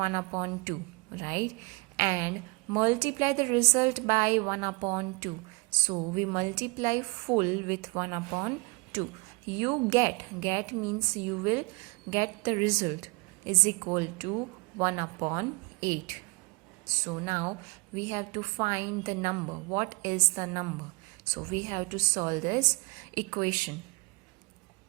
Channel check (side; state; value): left; quieter; 28.6 dB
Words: upon 2, right? And multiply the result by 1 upon 2. So we multiply full with 1 upon 2. You get means you will get the result is equal to 1 upon 8. So now we have to find the number. What is the number? So we have to solve this equation.